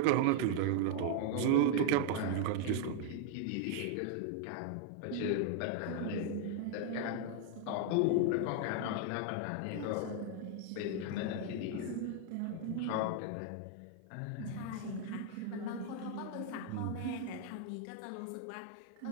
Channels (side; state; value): both; different; correlation 0.00